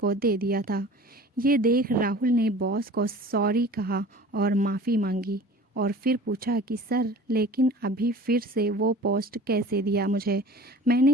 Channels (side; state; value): both; normal; correlation 0.43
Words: दे दिया था। ये देख राहुल ने बॉस को सॉरी कहा और माफ़ी मांगी और फिर पूछा कि सर, लेकिन अभी फिर से वो पोस्ट कैसे दिया मुझे?